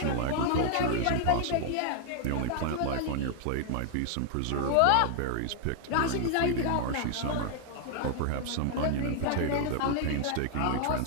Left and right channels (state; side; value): different; both; correlation 0.00